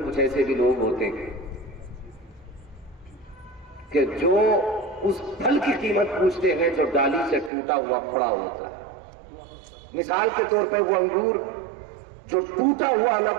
کچھ ایسے بھی لوگ ہوتے ہیں کہ جو اس پھل کی قیمت پوچھتے ہیں جو ڈالی سے ٹوٹا ہوا پڑا ہوتا ہے. مثال کے طور پہ وہ انگور جو ٹوٹا ہوا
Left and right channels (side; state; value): left; drops out; at 7.5 s